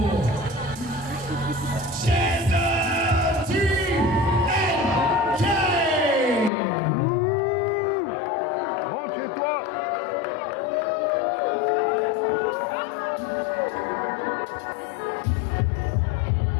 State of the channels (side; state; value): right; drops out; at 6.5 s